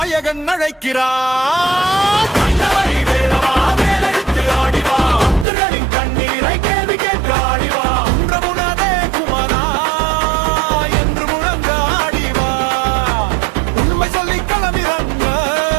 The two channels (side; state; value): left; drops out; at 5.5 s